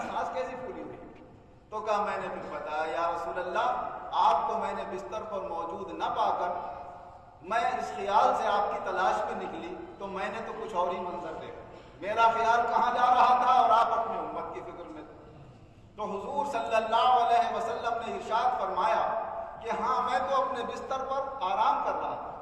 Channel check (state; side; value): identical; both; correlation 1.00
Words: سانس کیسی پھولی ہوئی؟ تو کہا میں نے پھر بتایا، یا رسول اللہ آپ کو میں نے بستر پر موجود نہ پا کر میں اس خیال سے آپ کی تلاش میں نکلی تو میں نے تو کچھ اور ہی منظر دیکھا، میرا خیال کہاں جا رہا تھا اور آپ اپنی امت کی فکر میں تھے۔ تو حضور صلی اللہ علیہ وسلم نے ارشاد فرمایا کہ ہاں میں تو اپنے بستر پر آرام کر رہا تھا،